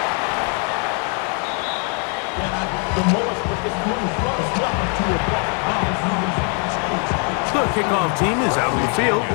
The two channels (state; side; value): quieter; right; 38.8 dB